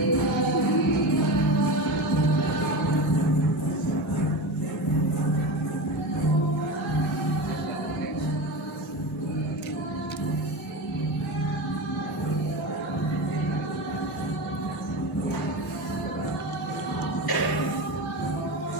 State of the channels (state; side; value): normal; both; correlation 0.24